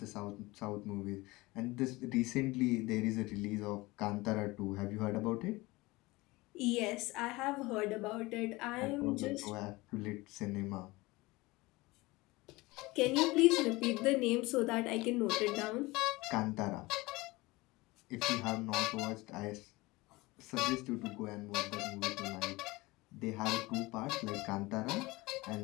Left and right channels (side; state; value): right; quieter; 21.7 dB